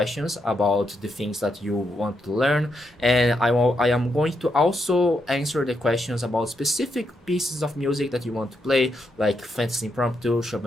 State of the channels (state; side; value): normal; both; correlation 0.81